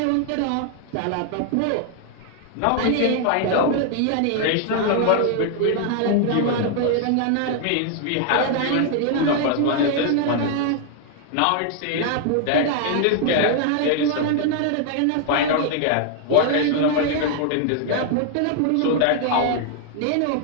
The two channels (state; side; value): different; both; correlation 0.00